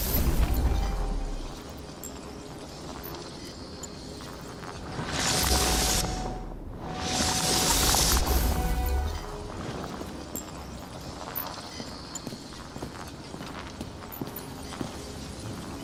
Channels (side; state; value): both; identical; correlation 1.00